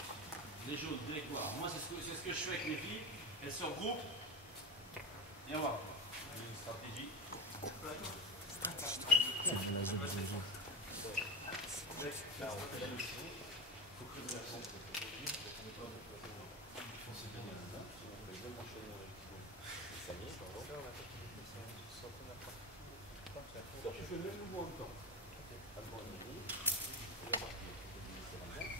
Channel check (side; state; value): both; normal; correlation 0.20